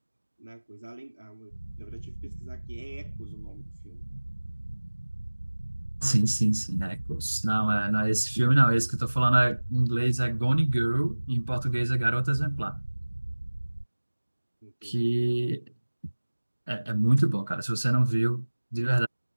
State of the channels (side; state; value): both; inverted; correlation -1.00